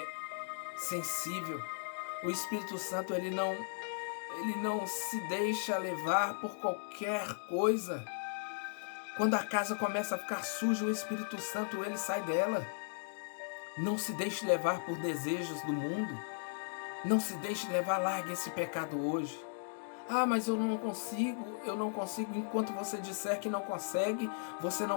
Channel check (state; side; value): silent; right; digital silence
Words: sensível. O Espírito Santo, ele não se deixa levar por qualquer coisa. Quando a casa começa a ficar suja, o Espírito Santo, ele sai dela. Não se deixe levar por desejos do mundo. Não se deixe levar, largue esse pecado hoje. Ah, mas eu não consigo. Enquanto você disser que não consegue, você